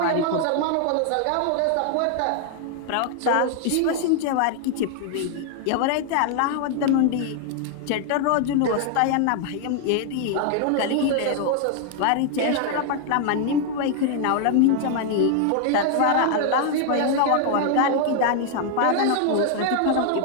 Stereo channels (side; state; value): both; different; correlation 0.00